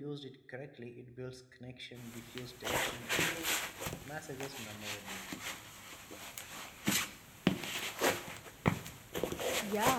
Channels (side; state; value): both; identical; correlation 1.00